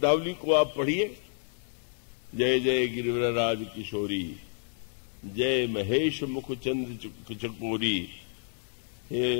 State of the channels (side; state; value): right; silent; digital silence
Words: को आप पढ़िए। जय जय गिरिवरराज किशोरी, जय महेश मुख चंद्र चकोरी, हे